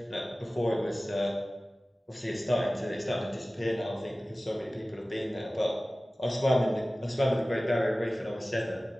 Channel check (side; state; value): both; normal; correlation 0.97